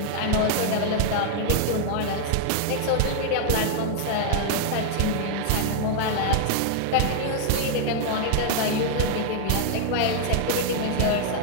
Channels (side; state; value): both; different; correlation 0.00